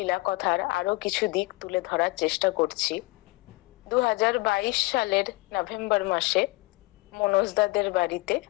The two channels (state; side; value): quieter; right; 23.0 dB